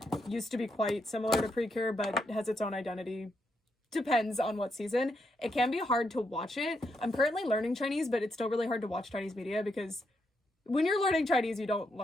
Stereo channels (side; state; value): both; normal; correlation 0.80